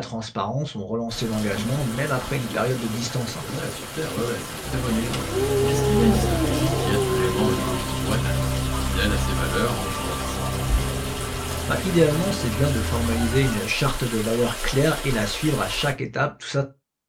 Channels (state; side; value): identical; both; correlation 1.00